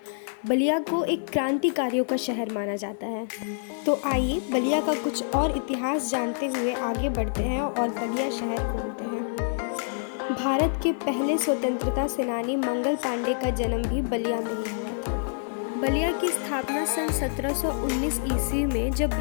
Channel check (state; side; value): silent; right; 58 dB below the other